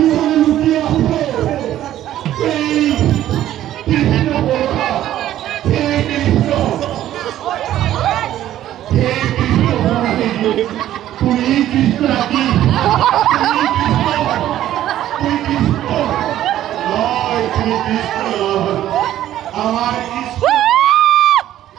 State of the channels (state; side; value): quieter; left; 12.7 dB